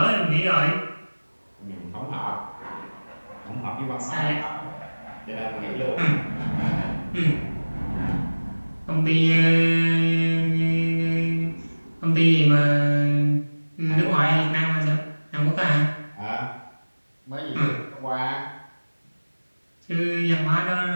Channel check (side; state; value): both; inverted; correlation -1.00